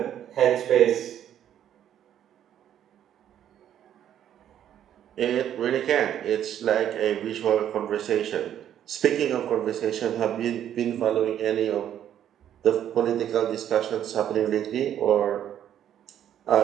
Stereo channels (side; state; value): left; quieter; 10.4 dB